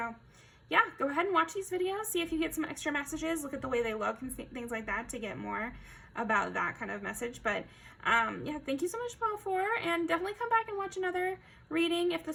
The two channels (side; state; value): both; identical; correlation 1.00